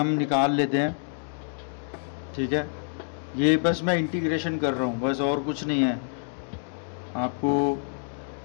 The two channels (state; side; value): silent; right; digital silence